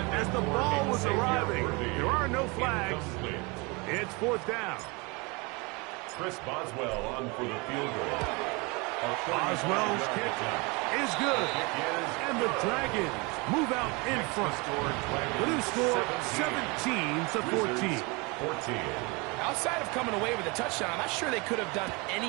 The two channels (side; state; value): left; quieter; 27.8 dB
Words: as the ball was arriving. There are no flags. It's fourth down. Chris Boswell on for the field goal. Boswell's kick is good. And the Dragons move out in front. The new score, 17-14. Outside of coming away with a touchdown, I'm not sure they could have done